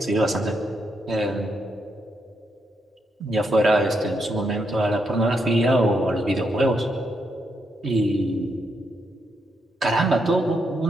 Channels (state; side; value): normal; both; correlation 0.80